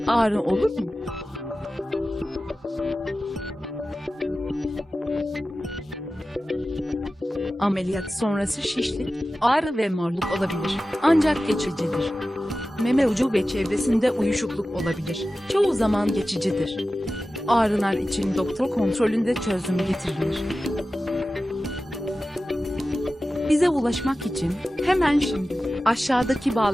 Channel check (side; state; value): both; normal; correlation 0.95